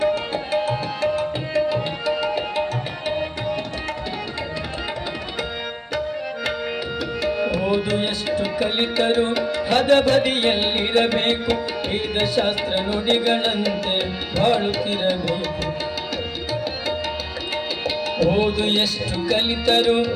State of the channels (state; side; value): identical; both; correlation 1.00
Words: ಓದು ಎಷ್ಟು ಕಲಿತರು ಹದಬದಿಯಲ್ಲಿರಬೇಕು, ವೇದಶಾಸ್ತ್ರ ನುಡಿಗಳಂತೆ ಬಾಳುತ್ತಿರಬೇಕು. ಓದು ಎಷ್ಟು ಕಲಿತರು